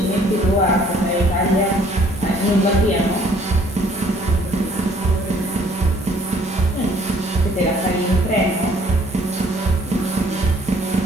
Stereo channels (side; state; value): both; normal; correlation 0.60